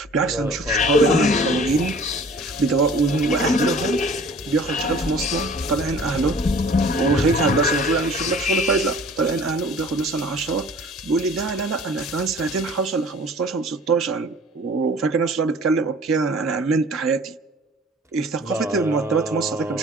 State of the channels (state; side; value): normal; both; correlation 0.48